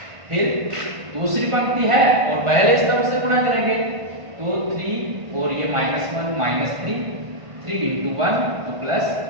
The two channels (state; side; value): late; left; 1.5 ms